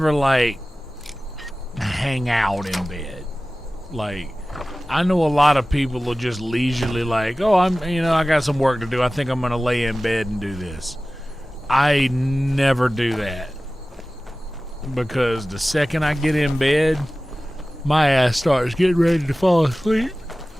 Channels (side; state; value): both; normal; correlation 0.97